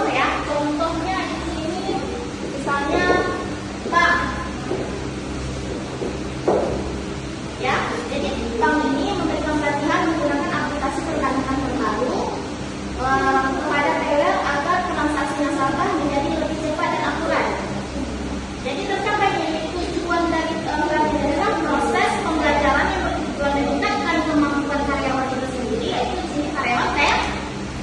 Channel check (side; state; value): both; identical; correlation 1.00